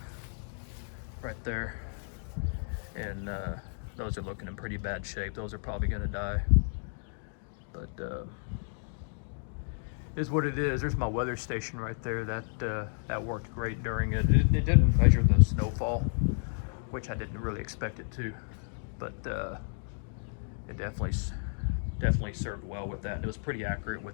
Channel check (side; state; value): right; silent; 56 dB below the other